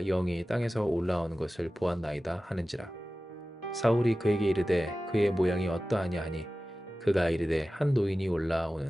영이 땅에서 올라오는 것을 보았나이다 하는지라. 사울이 그에게 이르되 그의 모양이 어떠하냐 하니 그가 이르되 한 노인이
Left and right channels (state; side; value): normal; both; correlation 0.95